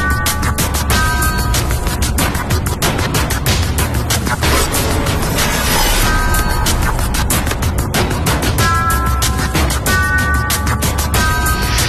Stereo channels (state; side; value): identical; both; correlation 1.00